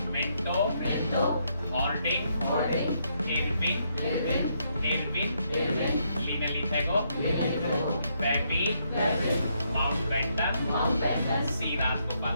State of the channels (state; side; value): inverted; both; correlation -0.76